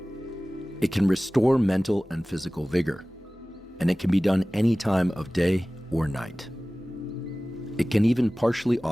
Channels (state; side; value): normal; both; correlation 0.98